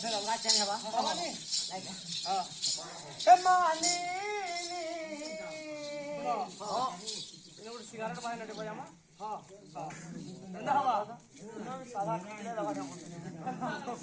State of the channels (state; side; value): identical; both; correlation 1.00